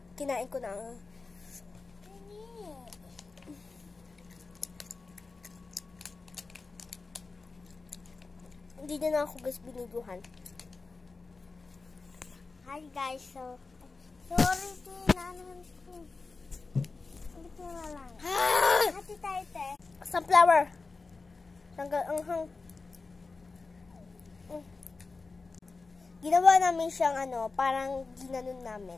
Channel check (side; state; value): right; quieter; 4.0 dB